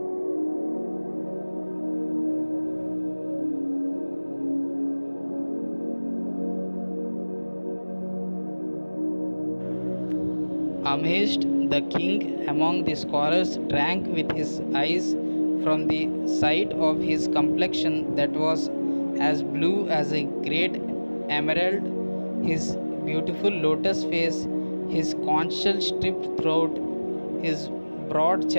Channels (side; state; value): both; inverted; correlation -1.00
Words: Amazed, the king among the scholars drank with his eyes from the sight of his complexion that was as blue as a great emerald, his beautiful lotus face, his conchal striped throat, his broad